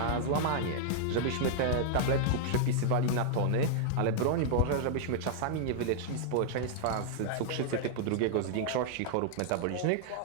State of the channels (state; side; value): different; both; correlation -0.01